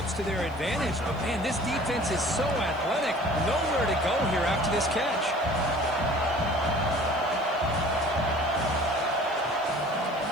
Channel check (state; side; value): noise; left; hiss, 29 dB below the sound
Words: to their advantage, but, man, this defense is so athletic. Nowhere to go here after this catch.